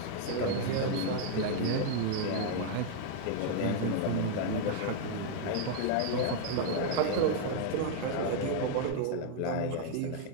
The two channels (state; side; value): different; both; correlation 0.00